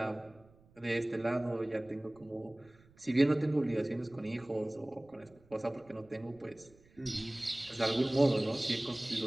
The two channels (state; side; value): noise; right; rumble, 28 dB below the sound